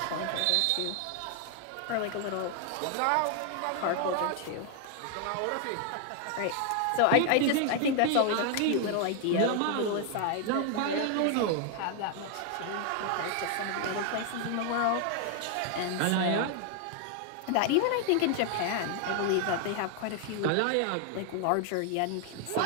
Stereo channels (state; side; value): different; both; correlation 0.00